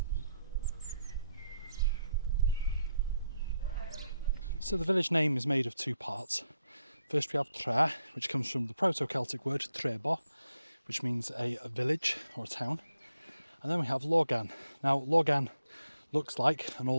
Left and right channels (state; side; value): inverted; both; correlation -0.79